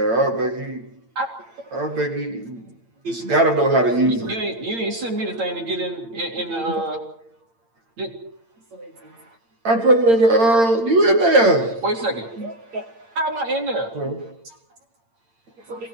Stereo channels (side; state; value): left; late; 8.8 ms